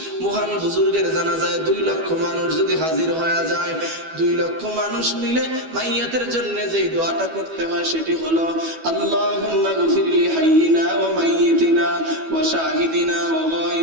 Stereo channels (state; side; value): late; left; 12 ms